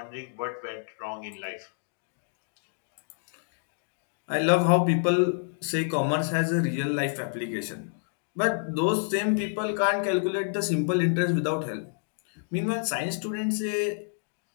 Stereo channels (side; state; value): right; silent; digital silence